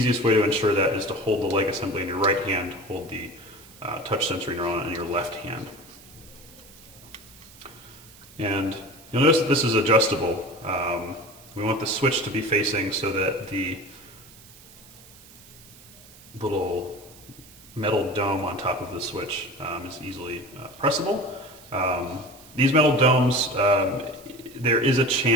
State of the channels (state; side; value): noise; right; hiss, 22 dB below the sound